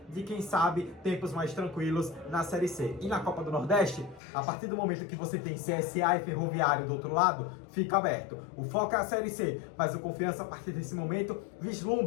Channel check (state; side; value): drops out; right; at 4.2 s